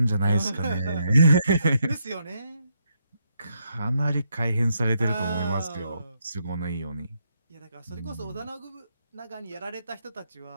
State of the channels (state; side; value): inverted; both; correlation -0.78